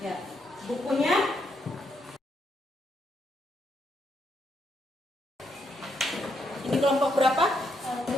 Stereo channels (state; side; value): normal; both; correlation 0.77